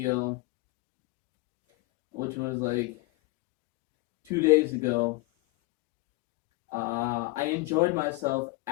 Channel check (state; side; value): quieter; right; 23.3 dB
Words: which was like 2 days ago, I enjoyed myself